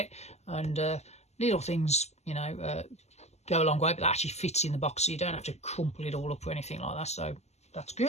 and little things, you know, go a long way, but that actually fits in the box, so you don't have to crumple it all up or anything like that, so that's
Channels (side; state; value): right; late; 0.32 ms